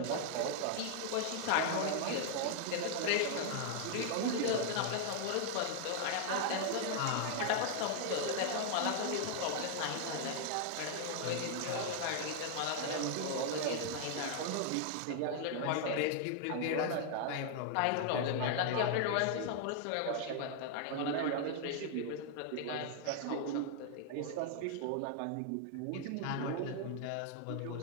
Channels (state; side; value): different; both; correlation 0.00